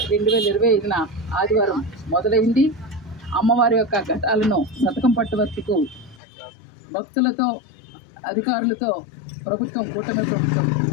2025న ఆదివారం మొదలైంది. అమ్మవారి యొక్క ఘటాలను శతకం పట్టువర్తికు భక్తులతో అధికారులతో ప్రభుత్వం కూటమి ప్రభుత్వం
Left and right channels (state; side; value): drops out; right; at 6.2 s